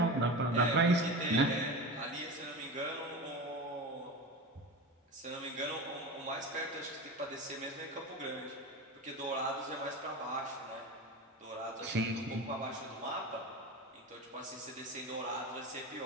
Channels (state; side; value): normal; both; correlation 0.27